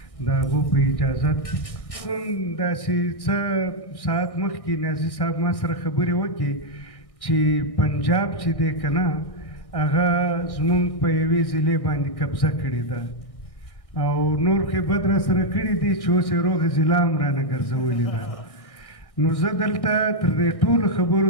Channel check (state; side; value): late; right; 1.6 ms